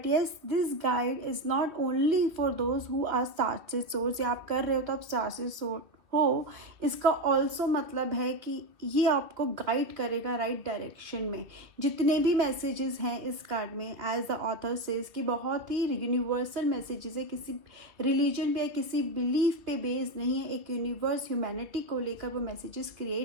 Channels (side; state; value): left; late; 2.8 ms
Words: yes, this guide is not only for those who are star seed souls. ये आप कर रहे हो तो आप star seed soul हो, इसका ऑल्सो मतलब है कि ये आपको गाइड करेगा राइट डायरेक्शन में. जितने भी मैसेजेस हैं इस कार्ड में, एज द ऑथर सेज, कि बहुत ही यूनिवर्सल मैसेजेस है, किसी रिलीजन पे या किसी बिलीफ पे बेस्ड नहीं है. एक यूनिवर्स, ह्यूमैनिटी को लेकर वो मैसेजेस